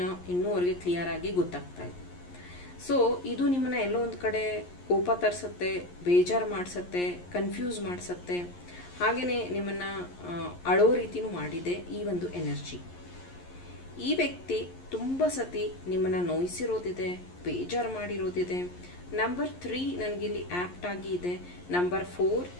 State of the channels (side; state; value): right; late; 11 ms